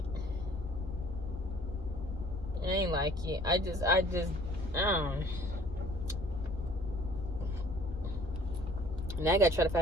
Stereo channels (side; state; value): both; normal; correlation 0.54